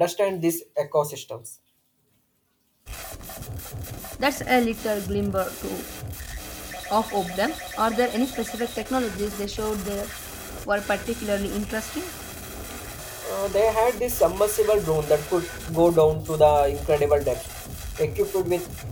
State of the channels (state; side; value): identical; both; correlation 1.00